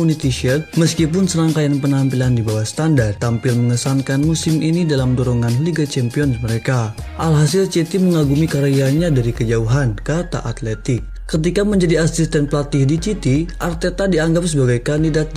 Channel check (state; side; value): identical; both; correlation 1.00